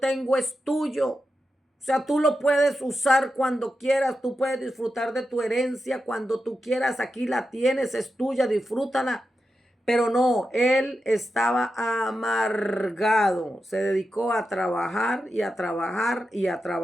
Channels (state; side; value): normal; both; correlation 0.89